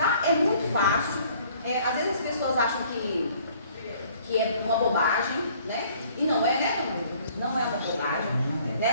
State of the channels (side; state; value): both; inverted; correlation -0.57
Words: É muito fácil. Às vezes as pessoas acham que é uma bobagem, né? E não é, né? Não é uma bobagem,